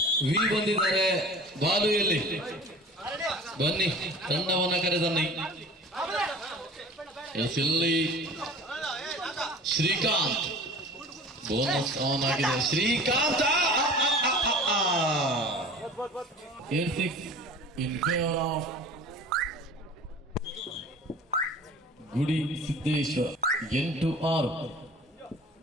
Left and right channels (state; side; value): normal; both; correlation 0.42